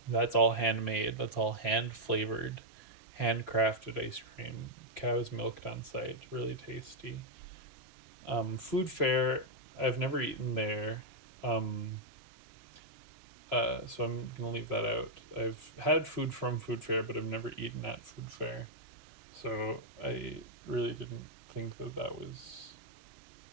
that's all handmade. That's all hand flavored, handcrafted ice cream. Cow's milked on site. Really tasty. Food Fair, I've never eaten there. Um, so I'm gonna leave that out. I've had food from Food Fair, but I've never eaten at Food Fair. So I really didn't think that that was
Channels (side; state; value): left; late; 3.0 ms